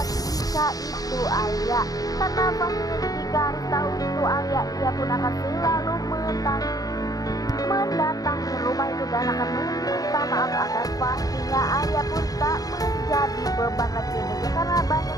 jika itu Alia, karena pastinya jika Haris tahu itu Alia, ia pun akan selalu mendatangi rumah itu dan akan meminta maaf agar pastinya Alia pun tak menjadi beban lagi ya guys ya, karena banyak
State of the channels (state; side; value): late; right; 0.18 ms